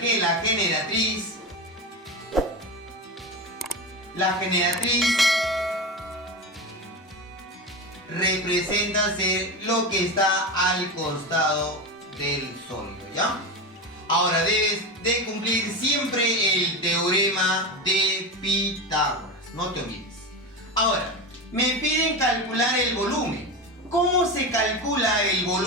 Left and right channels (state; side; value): normal; both; correlation 0.21